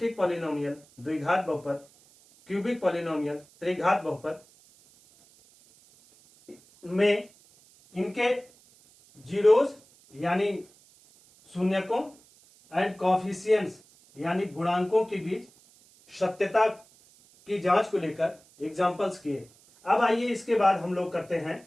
पॉलिनोमियल, द्विघात बहुपद, क्यूबिक पॉलिनोमियल, त्रिघात बहुपद में इनके जीरोज यानी शून्यकों एंड कॉफिशिएंट्स यानी गुणांकों के बीच सत्यता की जांच को लेकर एग्जांपल्स किए। अब आइए इसके बाद हम लोग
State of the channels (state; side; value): noise; right; hiss, 28 dB below the sound